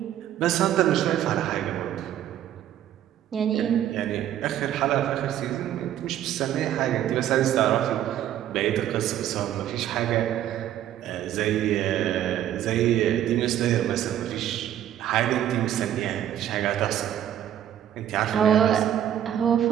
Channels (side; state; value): left; quieter; 11.3 dB